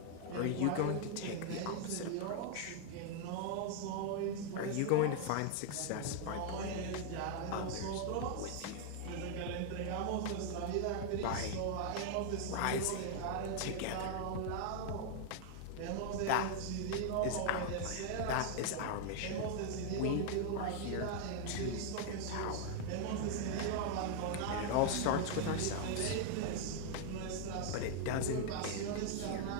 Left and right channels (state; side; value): different; both; correlation 0.00